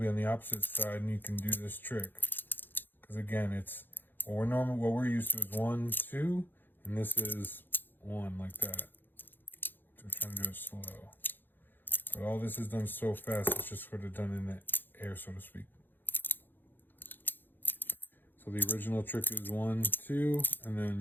on the opposite side, and you can do this trick. Because again, it's what we're used to is 1, 2, and this is 1 like that. So we're trying to do it slow, but all this is done so fast, it's just sort of done in the air, so to speak. So the original trick is 1, 2, and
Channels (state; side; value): late; right; 0.094 ms